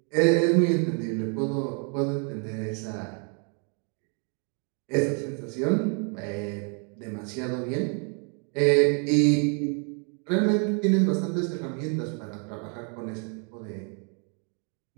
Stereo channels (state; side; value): quieter; left; 39.3 dB